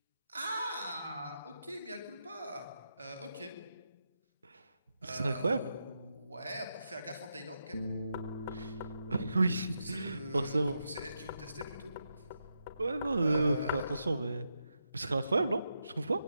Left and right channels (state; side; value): inverted; both; correlation -0.84